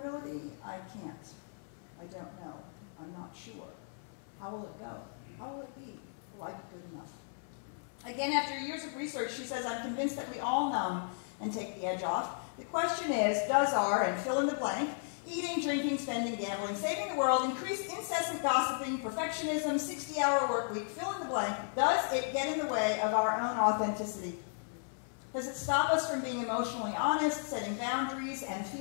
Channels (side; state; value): right; silent; 54 dB below the other